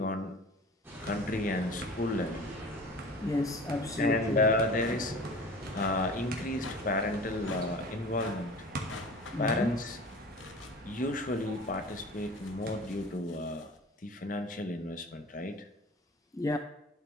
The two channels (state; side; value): normal; both; correlation 0.40